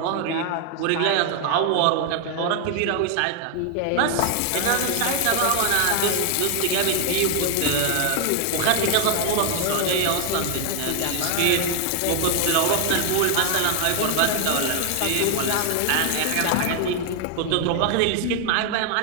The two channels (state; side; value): different; both; correlation 0.00